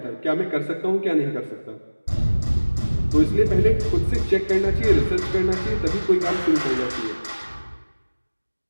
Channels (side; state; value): both; inverted; correlation -1.00